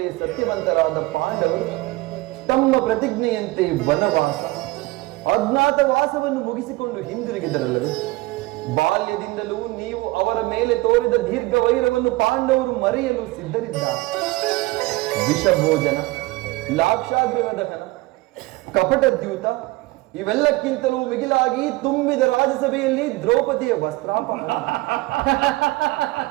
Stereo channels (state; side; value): quieter; left; 20.6 dB